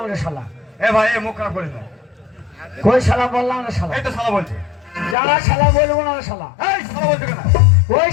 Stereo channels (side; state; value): right; drops out; at 5.2 s